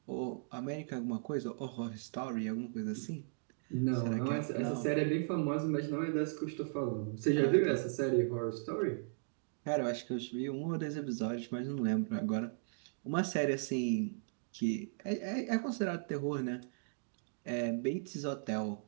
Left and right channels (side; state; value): left; silent; digital silence